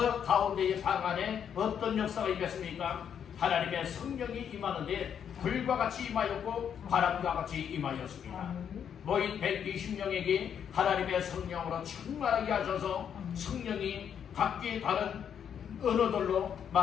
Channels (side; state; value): right; quieter; 8.3 dB